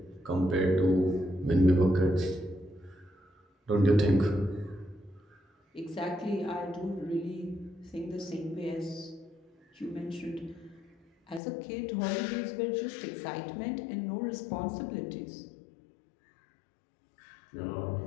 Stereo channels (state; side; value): drops out; right; at 11.4 s